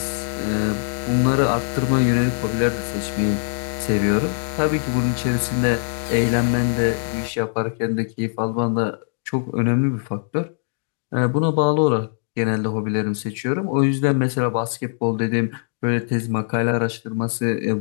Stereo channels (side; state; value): right; silent; digital silence